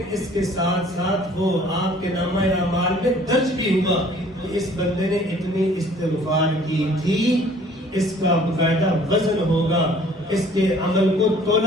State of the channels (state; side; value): normal; both; correlation 0.54